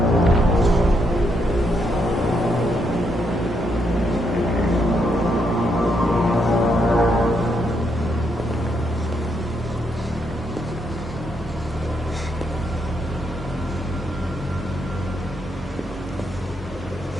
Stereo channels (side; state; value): both; normal; correlation 0.77